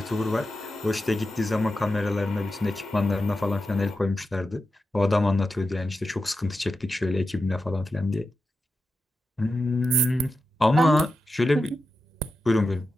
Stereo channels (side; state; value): both; normal; correlation 0.90